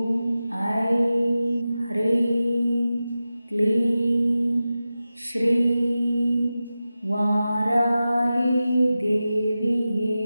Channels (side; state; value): both; inverted; correlation -0.94